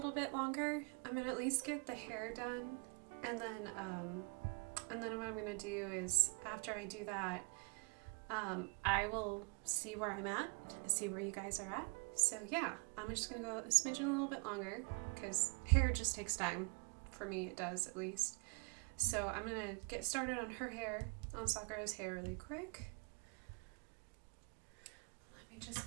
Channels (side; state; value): left; quieter; 33.9 dB